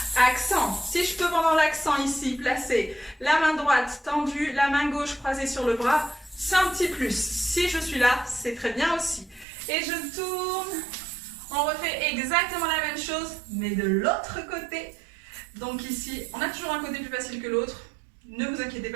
accent. Si je peux pendant l'accent ici, placer la main droite tendue, la main gauche croisée sur le bras, c'est un petit plus. Si je suis là, c'est très bien aussi. Et je tourne. On refait exactement la même chose, mais de l'autre côté. Donc ici, on a toujours un côté plus facile que l'autre. Ne vous inquiétez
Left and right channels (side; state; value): left; drops out; at 9.5 s